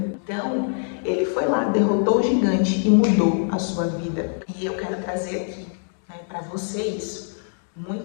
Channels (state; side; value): silent; right; digital silence